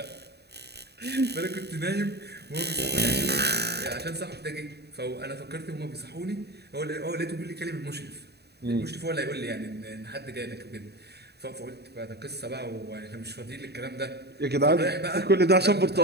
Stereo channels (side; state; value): left; late; 0.48 ms